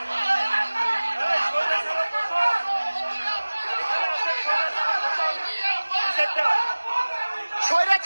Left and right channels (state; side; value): inverted; both; correlation -1.00